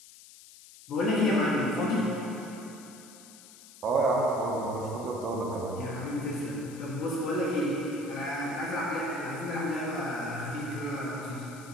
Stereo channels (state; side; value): noise; left; hiss, 19 dB below the sound